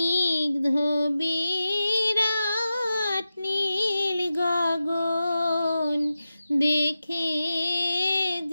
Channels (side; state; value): both; inverted; correlation -0.92